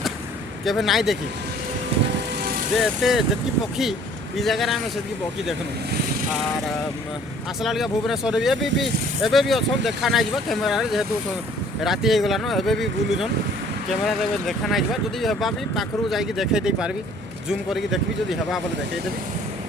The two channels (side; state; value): both; normal; correlation 0.55